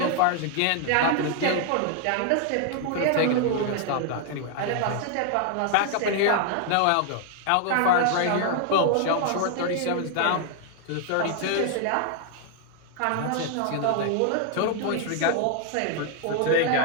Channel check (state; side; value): different; both; correlation 0.00